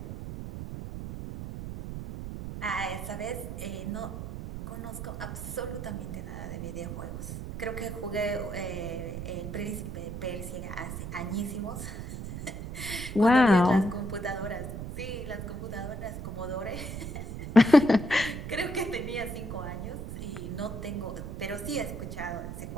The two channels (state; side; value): noise; right; rumble, 7 dB below the sound